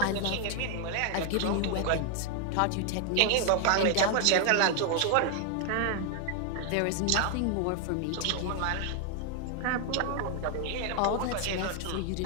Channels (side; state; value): both; different; correlation 0.00